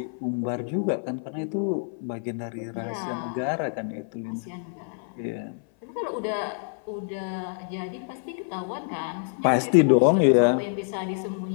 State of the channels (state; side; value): silent; right; 57 dB below the other